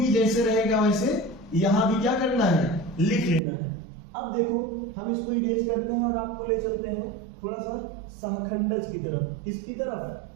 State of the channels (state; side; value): drops out; left; at 3.4 s